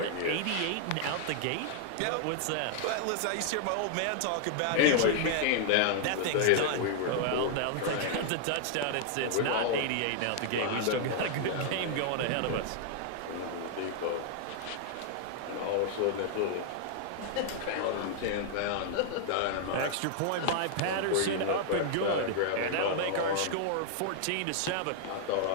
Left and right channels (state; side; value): different; both; correlation 0.00